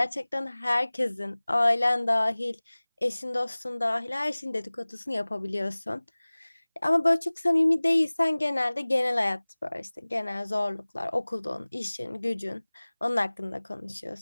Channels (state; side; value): inverted; both; correlation -1.00